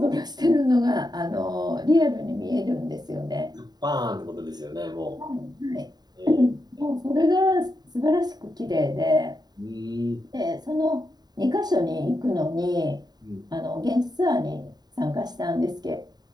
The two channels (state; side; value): late; left; 0.20 ms